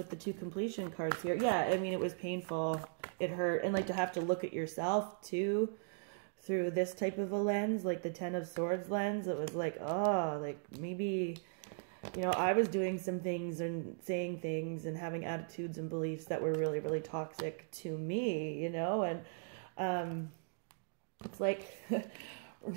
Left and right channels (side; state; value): left; silent; digital silence